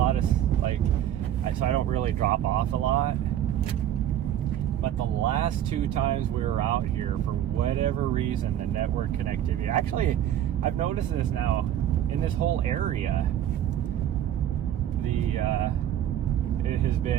of, like, so I don't really drop off a lot. But the last two times we were out here, for whatever reason, the network connectivity, actually I've noticed this now in this whole area, it has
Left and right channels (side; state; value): left; quieter; 11.1 dB